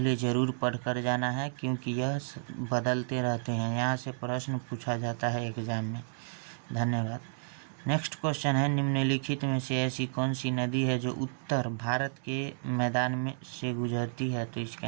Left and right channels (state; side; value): silent; left; digital silence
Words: जरूर पढ़कर जाना है क्योंकि यह बदलते रहते हैं। यहाँ से प्रश्न पूछा जाता है एग्जाम में। धन्यवाद। नेक्स्ट क्वेश्चन है निम्नलिखित में से ऐसी कौन सी नदी है जो उत्तर भारत के मैदान में से गुजरती है? तो इसका